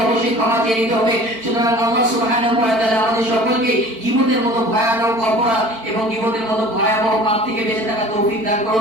অবশ্যই ক্ষমা চেয়ে নিতে হবে। সুতরাং আল্লাহ সুবহানাহু ওয়া তাআলা আমাদের সকলকে গীবতের মতো ভয়ানক অপরাধ এবং গীবতের মতো ভয়াবহ পাপ থেকে বেঁচে থাকার তৌফিক দান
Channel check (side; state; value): left; late; 4.5 ms